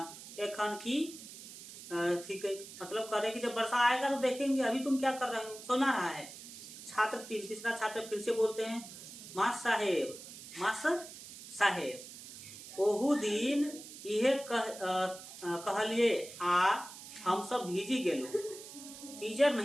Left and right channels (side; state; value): right; noise; hiss, 14 dB below the sound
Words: एखन की ठीक है, मतलब कह रहे कि जब वर्षा आएगा तो देखेंगे, अभी तुम क्या कर रहे हो, सुना रहा है। छात्र 3, तीसरा छात्र फिर से बोलते हैं मास्टर साहेब ओहू दिन इहे कहलिए आ हम सब भीजी गेलो, टीचर